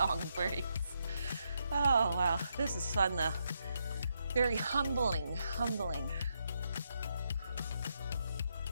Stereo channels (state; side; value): inverted; both; correlation -0.80